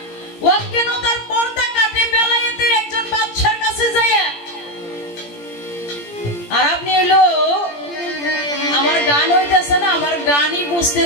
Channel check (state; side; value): late; right; 17 ms